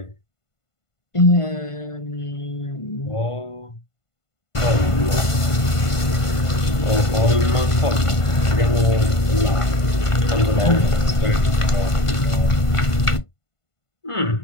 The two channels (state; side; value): late; right; 1.5 ms